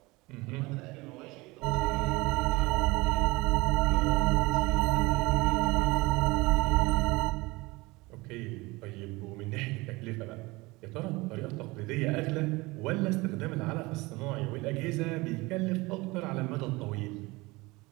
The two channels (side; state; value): left; quieter; 22.7 dB